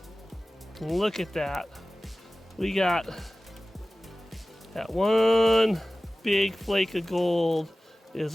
And look at that. We got that one big flake of gold is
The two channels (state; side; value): normal; both; correlation 0.97